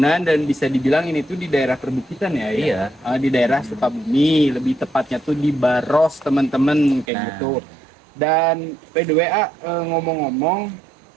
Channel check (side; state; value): left; drops out; at 7.1 s